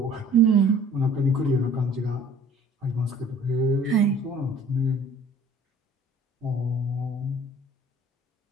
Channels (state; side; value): normal; both; correlation 0.52